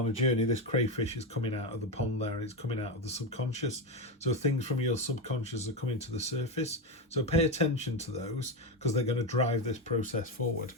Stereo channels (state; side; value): normal; both; correlation 0.12